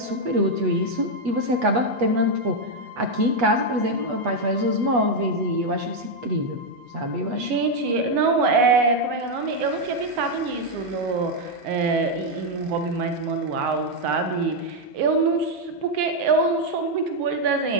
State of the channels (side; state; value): left; late; 8.2 ms